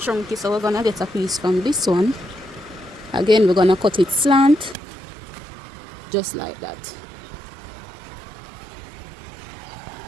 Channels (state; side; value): drops out; left; at 4.8 s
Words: so we're gonna get a piece from this one. Again, we're gonna cut it slant, just like that.